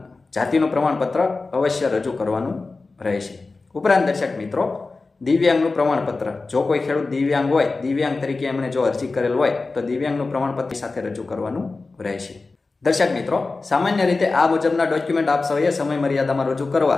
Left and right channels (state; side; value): quieter; right; 3.7 dB